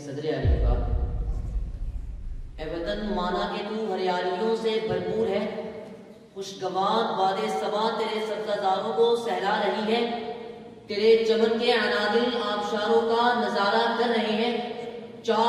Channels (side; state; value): both; identical; correlation 1.00